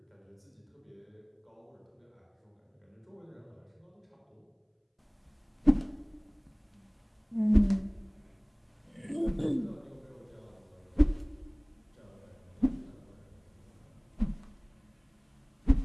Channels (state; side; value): identical; both; correlation 1.00